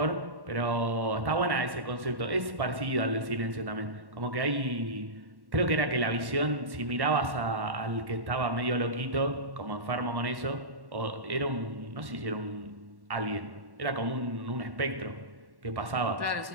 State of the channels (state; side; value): late; left; 1.1 ms